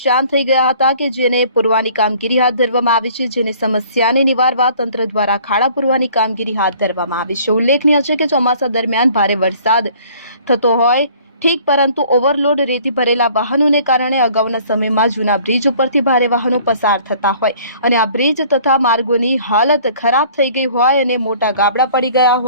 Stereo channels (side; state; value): both; inverted; correlation -0.54